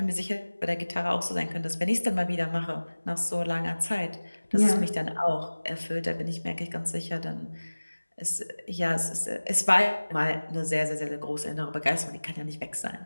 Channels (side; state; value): both; inverted; correlation -1.00